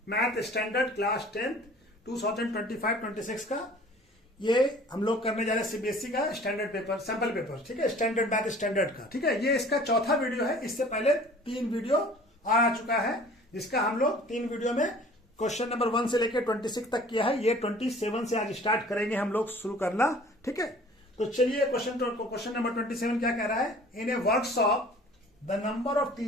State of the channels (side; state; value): both; normal; correlation 0.49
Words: math standard class 10 2025-26 का। ये हम लोग करने जा रहे हैं सीबीएसई का स्टैंडर्ड पेपर, सैंपल पेपर, ठीक है, स्टैंडर्ड मैथ स्टैंडर्ड का, ठीक है। ये इसका चौथा वीडियो है। इससे पहले 3 वीडियो आ चुका है, जिसका हम लोग 3 वीडियो में क्वेश्चन नंबर 1 से लेकर 26 तक किया है। ये 27 से आज स्टार्ट करेंगे हम लोग शुरू करना, ठीक है। तो चलिए क्वेश्चन नंबर 27 क्या कह रहा है। In a workshop the number of